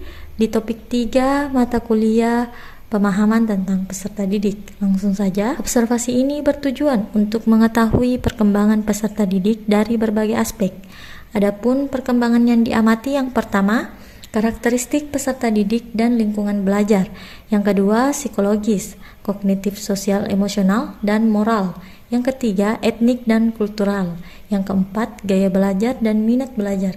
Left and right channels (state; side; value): identical; both; correlation 1.00